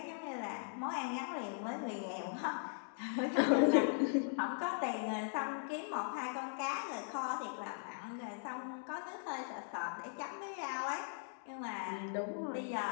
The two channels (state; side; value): silent; right; digital silence